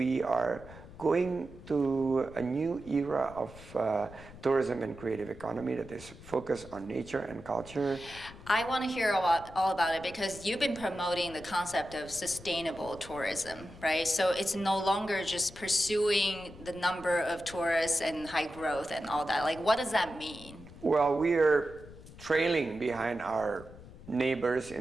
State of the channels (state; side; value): noise; left; rumble, 17 dB below the sound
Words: are going to a new era of tourism and creative economy that is focused on nature and culture. I want to hear all about it because you've been promoting the concept of sustainable tourism, right? So it's no longer just pursuing the number of tourists and high growth and all that. Like, what does that mean? Well, we are trailing behind our neighbors